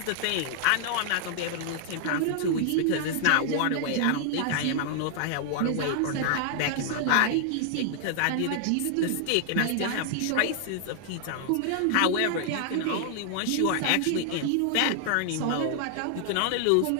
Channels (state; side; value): different; both; correlation 0.00